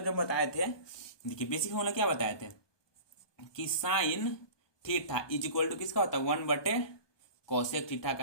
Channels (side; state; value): right; late; 1.2 ms